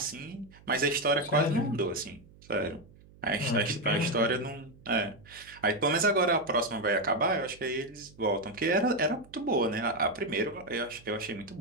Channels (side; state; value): right; noise; hum, 24 dB below the sound